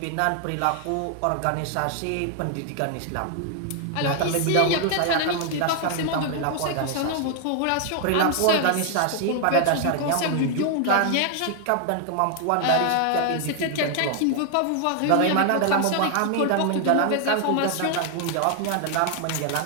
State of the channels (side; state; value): both; different; correlation 0.00